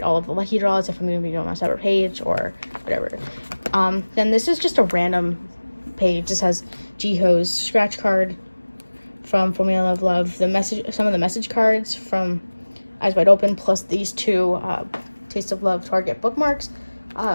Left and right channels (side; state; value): both; inverted; correlation -1.00